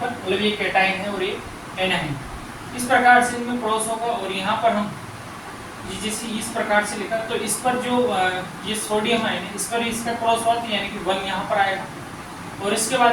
पर, मतलब ये कैटाइन है और ये एनाइन, इस प्रकार से इनमें क्रॉस होगा। और यहाँ पर हम जैसे इस प्रकार से लिखा, तो इस पर जो ये सोडियम आयन है, इस पर इसका क्रॉस हुआ, यानी कि 1 यहाँ पर आएगा। और इसके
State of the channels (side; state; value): both; identical; correlation 1.00